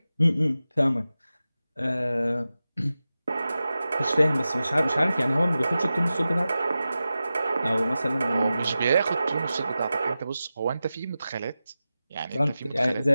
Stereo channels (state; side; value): inverted; both; correlation -0.94